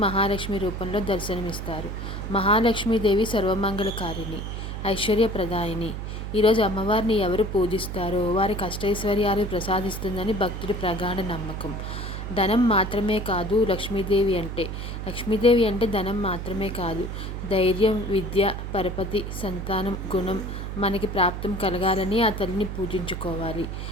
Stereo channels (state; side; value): noise; right; hum, 6 dB below the sound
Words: మహాలక్ష్మి రూపంలో దర్శనమిస్తారు. మహాలక్ష్మీదేవి సర్వమంగళకారిణి, ఐశ్వర్యప్రదాయిని. ఈరోజు అమ్మవారిని ఎవరు పూజిస్తారో వారికి అష్టైశ్వర్యాలు ప్రసాదిస్తుందని భక్తుడి ప్రగాఢ నమ్మకం. ధనం మాత్రమే కాదు లక్ష్మీదేవి అంటే ధనం మాత్రమే కాదు, ధైర్యం, విద్య, పరపతి, సంతానం, గుణం మనకి ప్రాప్తం కలగాలని ఆ తల్లిని పూజించుకోవాలి.